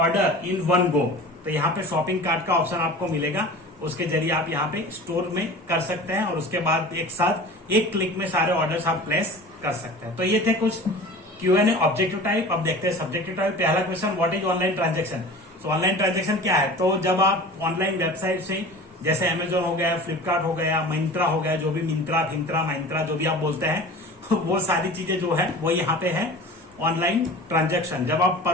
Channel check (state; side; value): normal; both; correlation 0.38